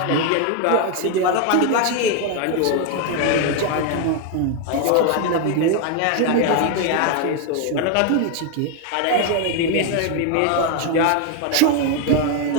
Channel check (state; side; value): different; both; correlation 0.01